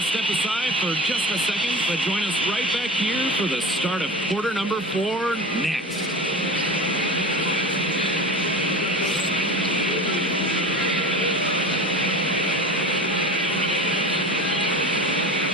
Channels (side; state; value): both; normal; correlation 0.32